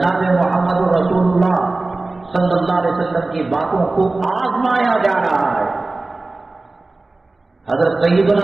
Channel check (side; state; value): left; quieter; 3.2 dB